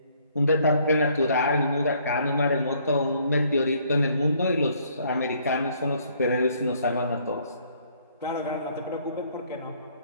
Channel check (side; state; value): both; inverted; correlation -0.65